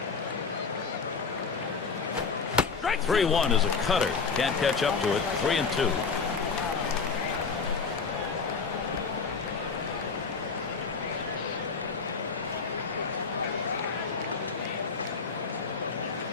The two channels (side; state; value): right; quieter; 5.1 dB